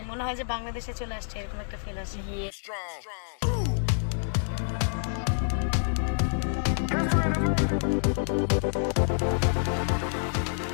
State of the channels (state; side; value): silent; right; digital silence